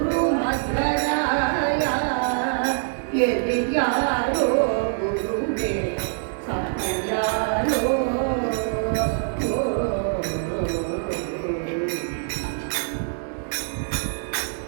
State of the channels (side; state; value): left; silent; 62 dB below the other